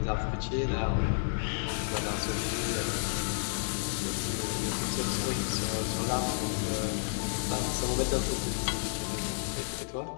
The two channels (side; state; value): right; silent; digital silence